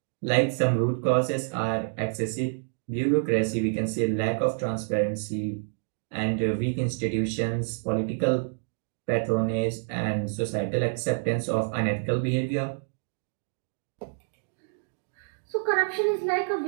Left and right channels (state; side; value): silent; left; digital silence